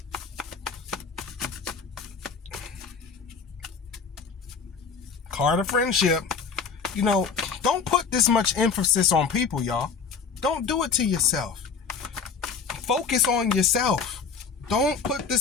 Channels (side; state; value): right; quieter; 5.6 dB